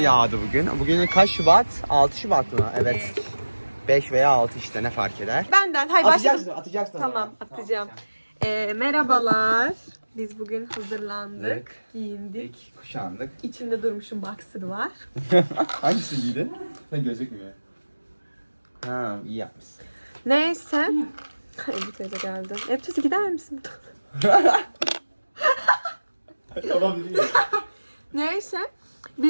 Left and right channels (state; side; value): inverted; both; correlation -1.00